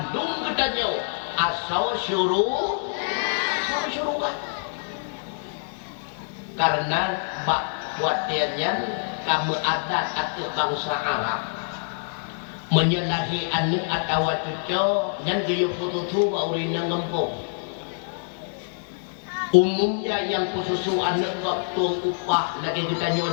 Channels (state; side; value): silent; right; digital silence